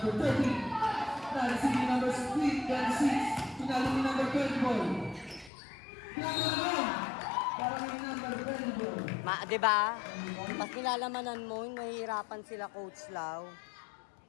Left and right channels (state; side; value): drops out; right; at 5.5 s